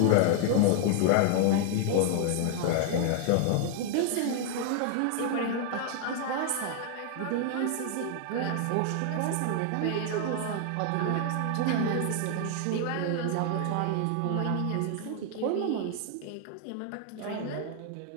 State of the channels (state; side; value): different; both; correlation 0.00